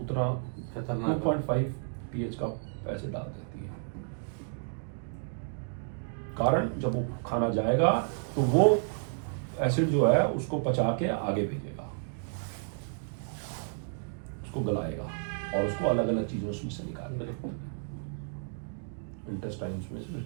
उतना 2.5 pH का एसिड डाल देती है। कारण जब वो खाना जाएगा तो वो एसिड जो है उसको पचा के आगे भेजेगा, उसको गलाएगा और उसको अलग अलग चीज़ें उसमें से निकालेगा, इंटेस्टाइन्स में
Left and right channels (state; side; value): silent; left; digital silence